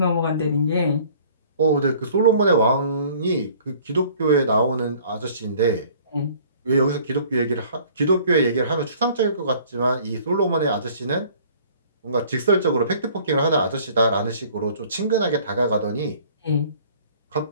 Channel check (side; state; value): both; inverted; correlation -0.53